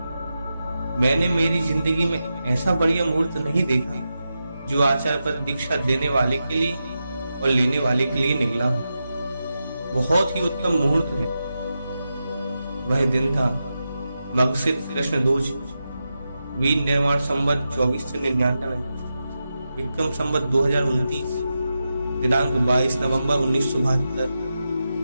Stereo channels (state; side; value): inverted; both; correlation -0.90